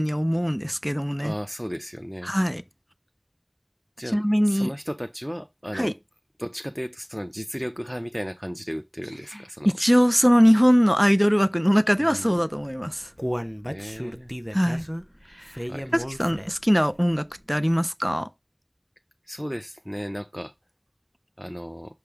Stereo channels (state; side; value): identical; both; correlation 1.00